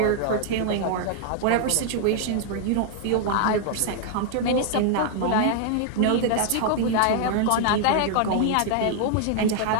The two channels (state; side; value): different; both; correlation 0.00